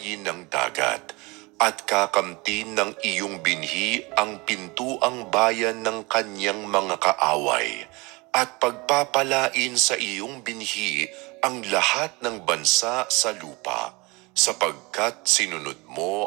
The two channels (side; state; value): left; quieter; 25.5 dB